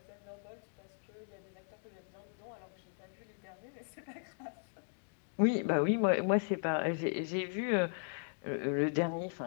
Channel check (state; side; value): silent; right; digital silence